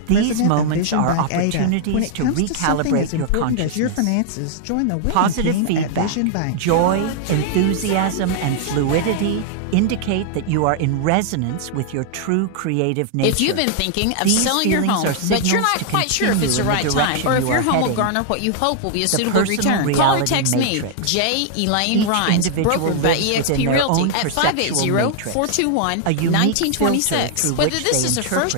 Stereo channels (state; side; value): different; both; correlation 0.00